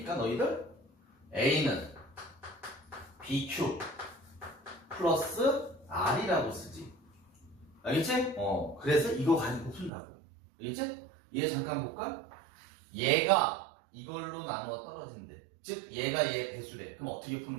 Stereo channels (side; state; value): left; drops out; at 9.9 s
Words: 너희들? A는 BQ 플러스 R이라고 쓰지. 알겠지? 그래서 이거 가지고 푼다고. 알겠지? 얘 잠깐 볼까? 얘가 이걸로 나누어 떨어진대. 즉, 얘가 얘 배수래. 그럼 어떻게